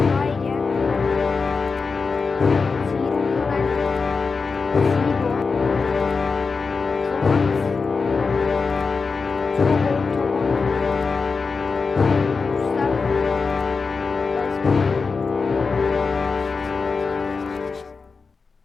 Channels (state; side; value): quieter; right; 4.6 dB